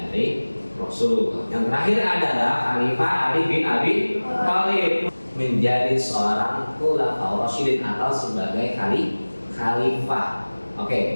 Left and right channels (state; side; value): inverted; both; correlation -1.00